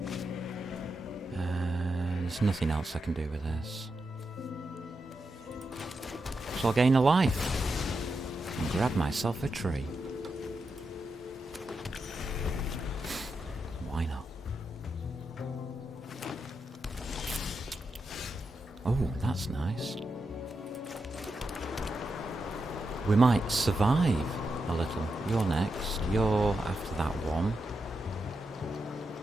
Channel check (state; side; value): normal; both; correlation 0.86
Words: There's nothing else I can do with this. So I'll gain a life. And grab myself a tree. Why not? Oh, that's nice. We might survive a little. You're next. You're after that one.